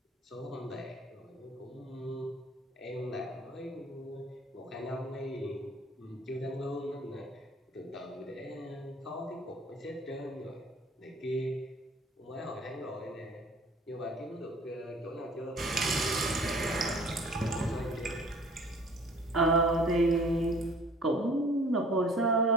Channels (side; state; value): both; normal; correlation 0.52